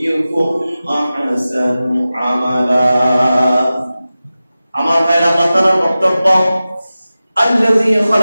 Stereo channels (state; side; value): inverted; both; correlation -0.95